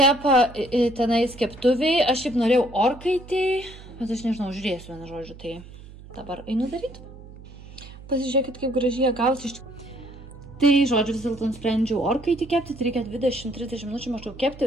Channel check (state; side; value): noise; right; hum, 18 dB below the sound